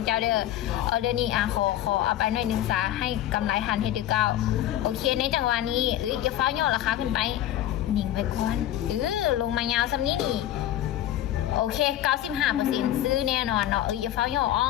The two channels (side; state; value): right; quieter; 12.8 dB